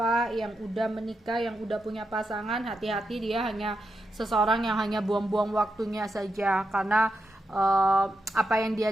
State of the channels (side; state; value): both; normal; correlation 0.86